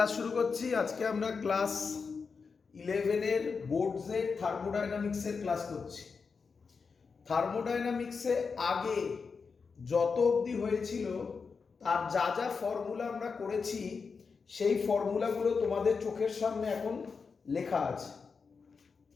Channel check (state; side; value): quieter; right; 5.2 dB